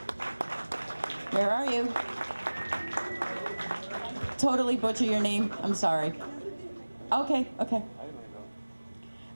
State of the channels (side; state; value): both; inverted; correlation -1.00